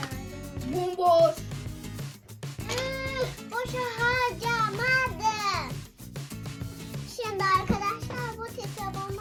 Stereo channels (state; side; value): identical; both; correlation 1.00